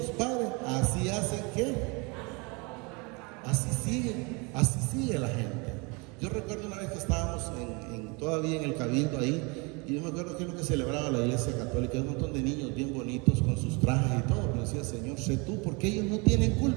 padres, así hacen que así sigue la gente. Yo recuerdo una vez que estábamos todavía en el cabildo ahí, y yo me acuerdo que es lo que celebraba la iglesia católica, un montón de niños bien bonitos con sus trajes y todo, pero decía, Señor, sé tú, porque ellos no tienen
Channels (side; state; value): left; quieter; 29.7 dB